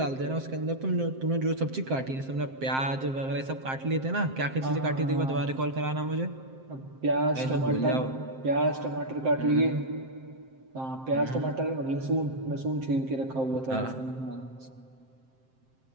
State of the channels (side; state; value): left; late; 7.6 ms